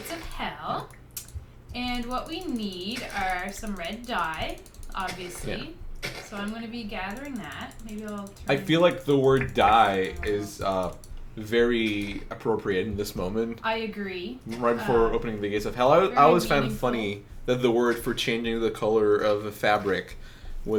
of hell. And what we need are some red dye, obviously. Yeah. So I'm going to be gathering that. Maybe I'll I feel like the word dye is very appropriate in this moment. I agree. Right before opening the gates of hell. I always found it funny that the word for changing the color of a fabric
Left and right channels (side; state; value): both; identical; correlation 1.00